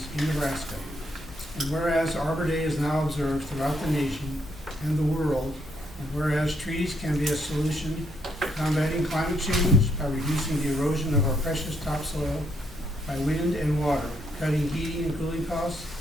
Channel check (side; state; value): both; normal; correlation 0.73